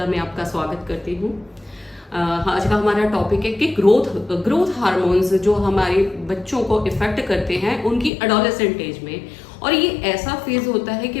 में आपका स्वागत करती हूँ। आज का हमारा टॉपिक है कि ग्रोथ हार्मोन्स जो हमारे बच्चों को इफेक्ट करते हैं उनकी एडोलेसेंट एज में। और ये ऐसा फेज होता है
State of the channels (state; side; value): drops out; right; at 8.1 s